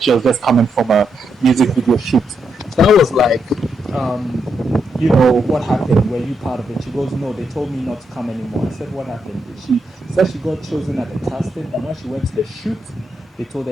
she was just coming from a music video shoot. So I was like, what happened? Were you part of it? She goes, no, they told me not to come anymore. I said, what happened? She said she got chosen at the casting, and when she went to the shoot, they told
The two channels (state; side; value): normal; both; correlation 0.81